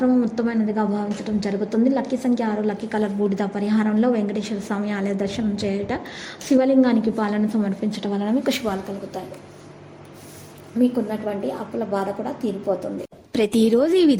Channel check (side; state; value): both; identical; correlation 1.00